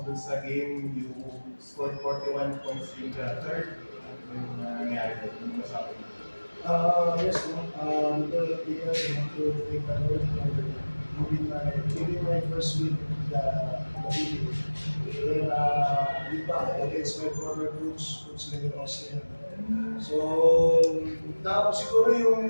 dun sa game? You scored 41 points in the third. Ano yung nangyari doon? Ano masabi mo? Yes, no. Because of the years, I want to thank the Lord for giving my first win in the video. Then, against my former coach, Coach Leo Austin. So, siguro yung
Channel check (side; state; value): both; inverted; correlation -1.00